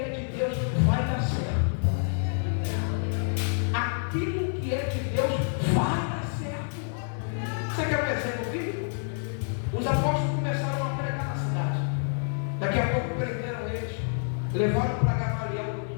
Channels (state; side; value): silent; right; digital silence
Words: é de Deus vai dar certo. Aquilo que é de Deus vai dar certo. Você quer um exemplo bíblico? Os apóstolos começaram a pregar na cidade. Daqui a pouco prenderam eles, levaram para Gamaliel,